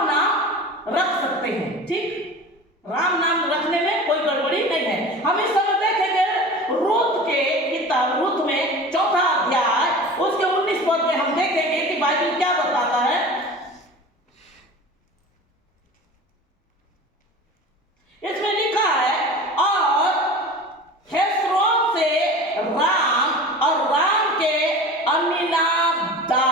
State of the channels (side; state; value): both; normal; correlation 0.36